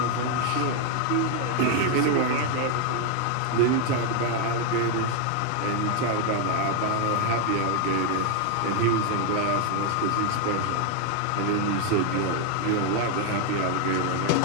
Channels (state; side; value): different; both; correlation 0.00